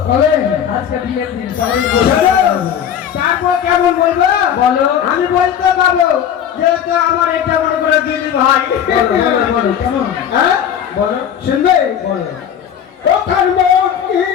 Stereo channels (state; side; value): quieter; right; 9.1 dB